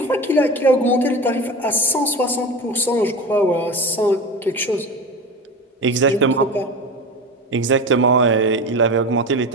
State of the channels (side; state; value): both; normal; correlation 0.28